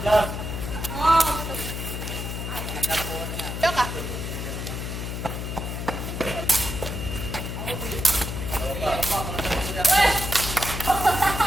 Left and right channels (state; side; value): noise; left; hum, 5 dB below the sound